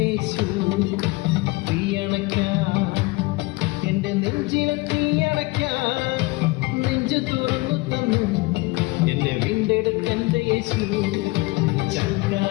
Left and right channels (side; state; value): right; quieter; 23.0 dB